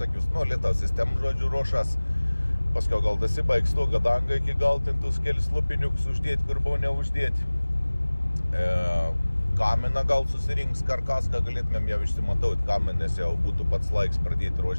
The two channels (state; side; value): inverted; both; correlation -1.00